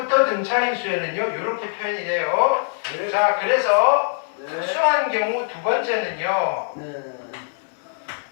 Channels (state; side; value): silent; right; digital silence